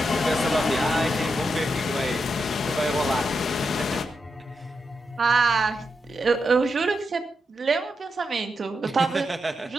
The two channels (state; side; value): normal; both; correlation 0.85